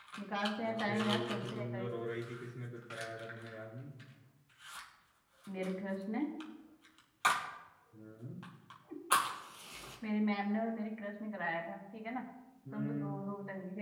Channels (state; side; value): identical; both; correlation 1.00